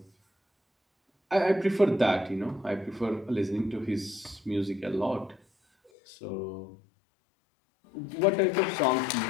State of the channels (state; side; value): drops out; right; at 5.9 s